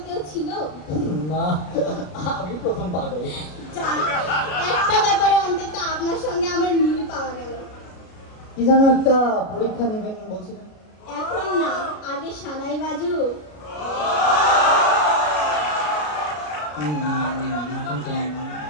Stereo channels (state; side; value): late; right; 33 ms